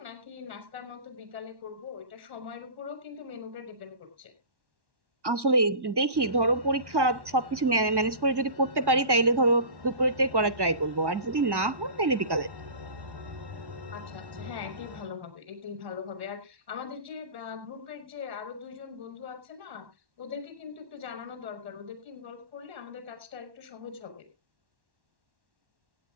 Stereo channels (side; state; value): left; late; 1.1 ms